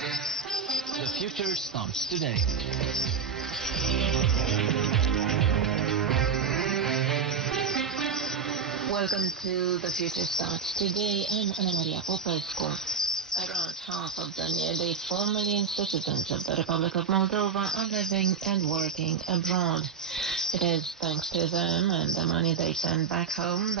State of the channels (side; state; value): left; quieter; 6.3 dB